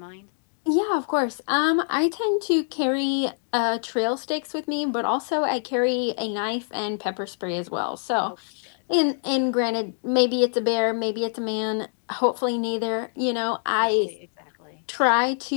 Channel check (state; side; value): silent; right; digital silence